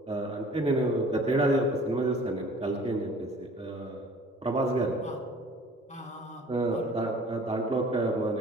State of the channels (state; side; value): normal; both; correlation 0.50